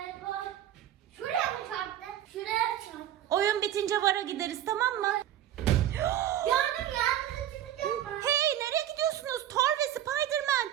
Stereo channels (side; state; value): left; quieter; 11.8 dB